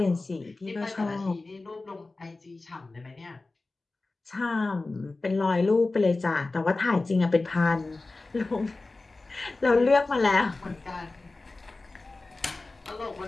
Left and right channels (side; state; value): right; quieter; 3.3 dB